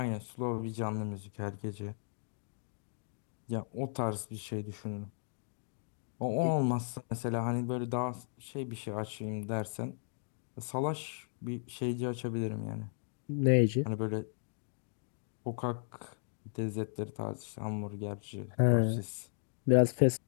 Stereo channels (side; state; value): right; silent; digital silence